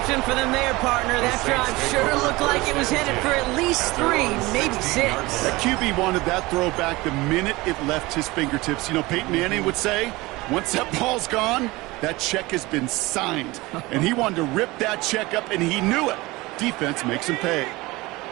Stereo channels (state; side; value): quieter; left; 21.3 dB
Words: for them there, partner. That drive sure looked like it was headed for at least 3, maybe 6. That QB wanted that throw back the minute it left his fingertips. You know, Peyton Manning would say, once that ball's gone, that check has been signed. And he wanted to rip that check up, and he knew it. Defense makes him pay.